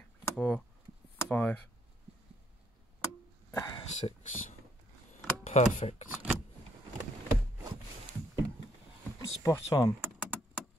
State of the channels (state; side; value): normal; both; correlation 0.70